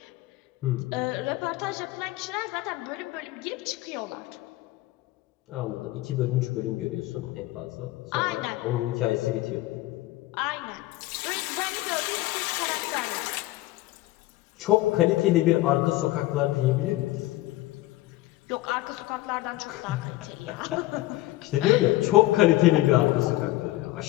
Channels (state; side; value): quieter; right; 17.5 dB